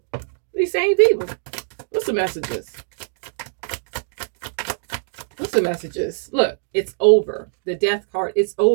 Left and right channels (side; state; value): left; silent; digital silence